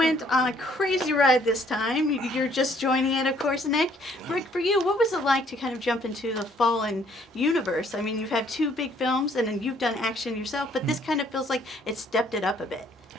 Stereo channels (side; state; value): both; normal; correlation 0.63